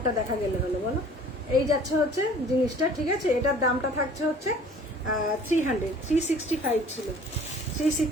দেখা গেলে হলো, বলো। এই যাচ্ছে হচ্ছে জিনিসটা, ঠিক আছে। এটার দামটা থাকছে হচ্ছে 300, 365 ছিল,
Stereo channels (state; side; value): normal; both; correlation 0.50